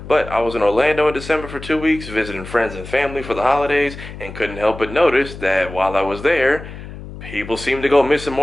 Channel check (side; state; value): left; noise; hum, 13 dB below the sound